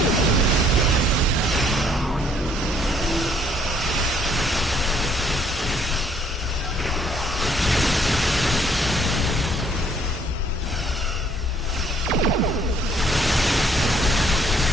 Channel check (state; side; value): normal; both; correlation 0.63